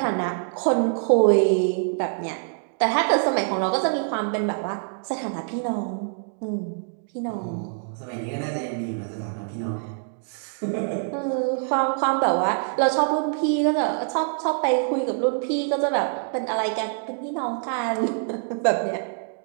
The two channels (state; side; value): silent; left; 62 dB below the other